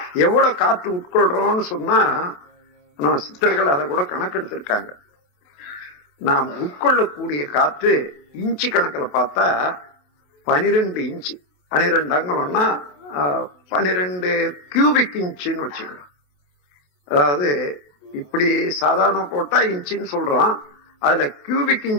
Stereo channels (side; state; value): right; late; 28 ms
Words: எவ்வளவு காற்று உட்கொள்றோம்னு சொன்னா நம்ம சித்தர்கள் அதை கூட கணக்கெடுத்திருக்காங்க. நாம் உட்கொள்ளக்கூடிய காற்று இன்ச்சு கணக்கில் பார்த்தா 12 இன்ச்சு, 12 அங்கலம்னா 12 கியூபிக் இன்ச்சுன்னு வச்சுக்கலாம். அதாவது இப்படி சாதாரண போட்டா இன்ச்சுன்னு சொல்றோம், அதுல கியூபிக்